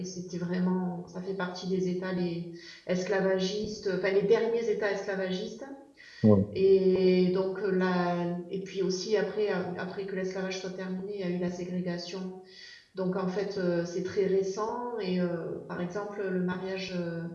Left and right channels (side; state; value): both; identical; correlation 1.00